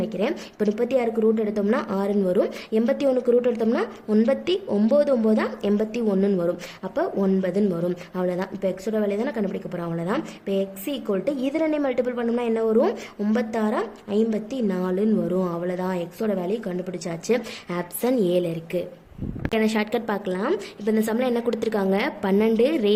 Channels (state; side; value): identical; both; correlation 1.00